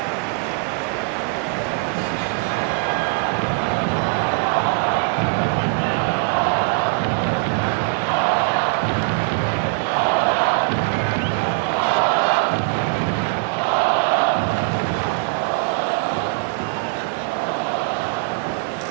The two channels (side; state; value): left; quieter; 31.1 dB